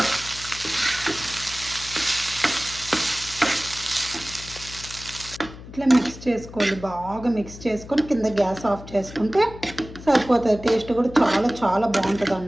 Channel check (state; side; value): noise; left; hum, 15 dB below the sound